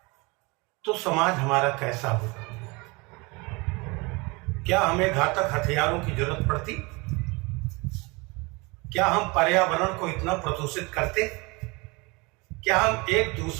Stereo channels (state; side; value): quieter; left; 26.7 dB